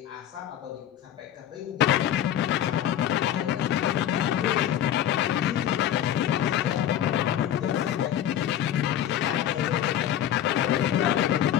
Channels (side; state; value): right; quieter; 11.0 dB